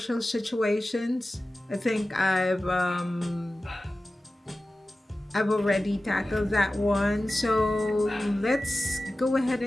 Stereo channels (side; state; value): both; normal; correlation 0.95